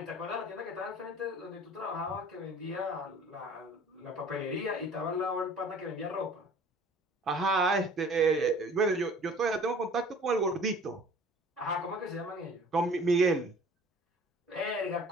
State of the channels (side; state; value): both; normal; correlation 0.48